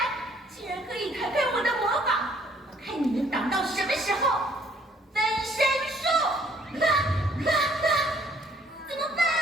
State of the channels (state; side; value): normal; both; correlation 0.62